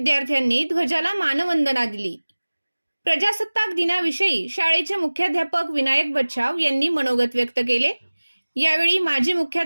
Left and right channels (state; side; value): inverted; both; correlation -1.00